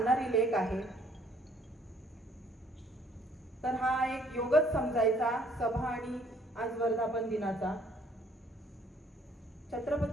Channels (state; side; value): normal; both; correlation 0.62